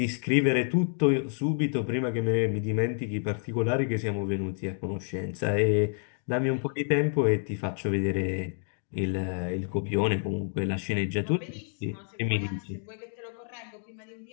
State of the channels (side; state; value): right; silent; digital silence